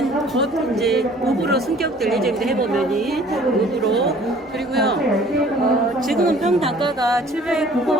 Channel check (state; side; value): normal; both; correlation 0.53